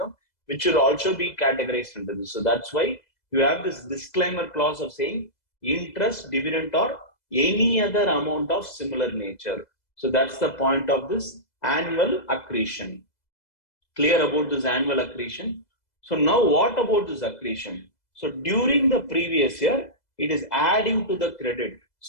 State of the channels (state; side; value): late; right; 2.0 ms